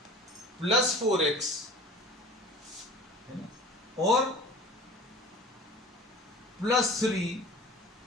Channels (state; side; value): normal; both; correlation 0.41